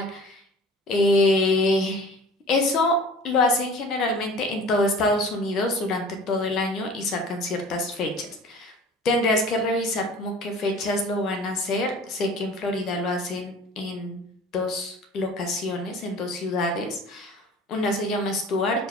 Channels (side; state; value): both; normal; correlation 0.43